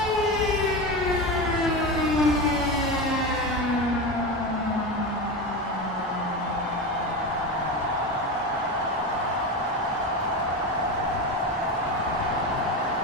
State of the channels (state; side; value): normal; both; correlation 0.21